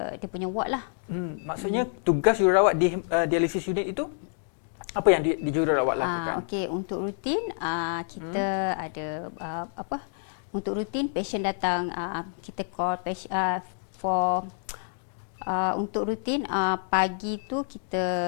punya ward lah. Maksudnya tugas jururawat di dialysis unit itu apa yang di jururawat lakukan? Okey, untuk rutin kita ada untuk rutin patient datang, kita call patient untuk rutin pagi tu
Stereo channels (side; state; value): right; silent; digital silence